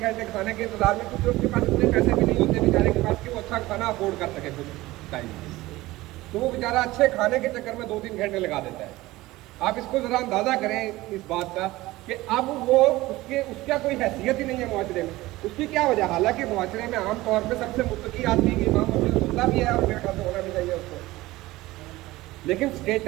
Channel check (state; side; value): quieter; left; 18.5 dB